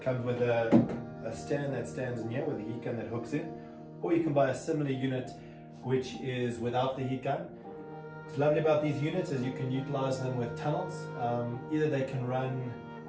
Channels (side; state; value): both; identical; correlation 1.00